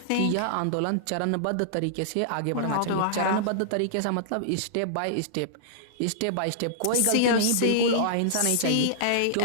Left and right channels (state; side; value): different; both; correlation -0.02